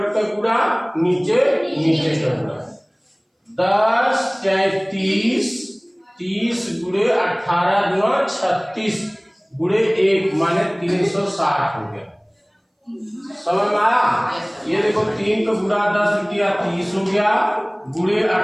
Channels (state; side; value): identical; both; correlation 1.00